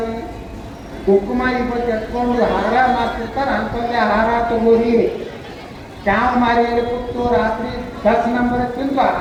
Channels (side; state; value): both; identical; correlation 1.00